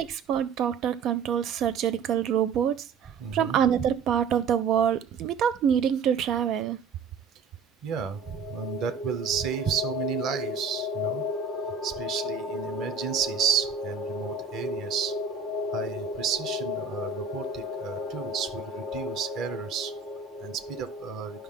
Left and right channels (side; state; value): left; quieter; 5.6 dB